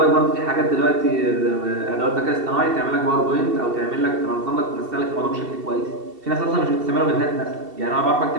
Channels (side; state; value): left; late; 2.7 ms